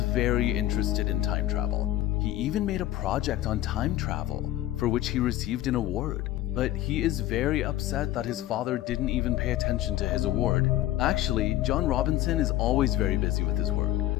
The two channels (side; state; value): right; quieter; 14.5 dB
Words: very interested in time travel. He even made a project on time travel, for which he received an award. But he is very upset that his father didn't even pay attention to his award. Actually, John Robinson is always very busy with his work.